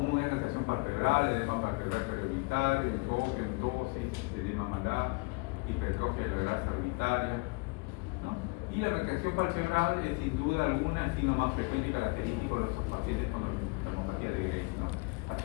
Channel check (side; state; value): right; quieter; 29.0 dB